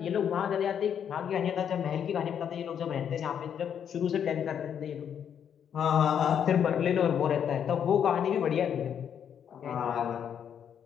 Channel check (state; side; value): quieter; right; 8.5 dB